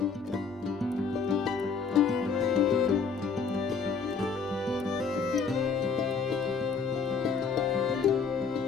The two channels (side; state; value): right; quieter; 5.4 dB